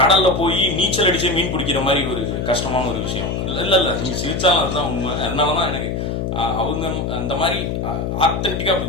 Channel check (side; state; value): left; noise; hum, 2 dB below the sound